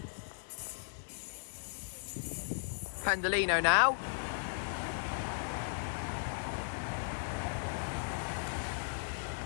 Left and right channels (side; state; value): right; silent; digital silence